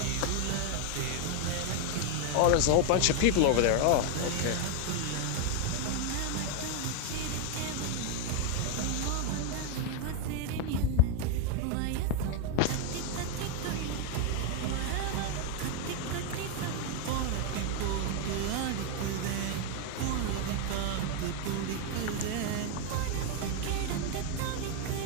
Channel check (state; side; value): different; both; correlation 0.01